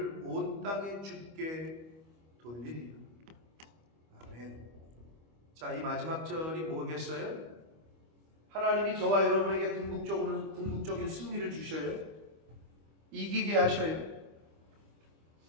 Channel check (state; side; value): late; left; 25 ms